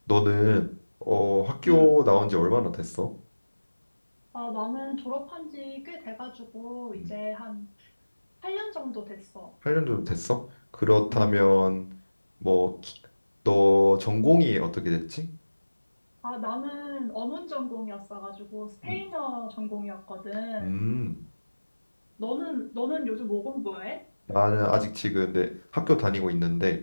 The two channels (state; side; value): inverted; both; correlation -1.00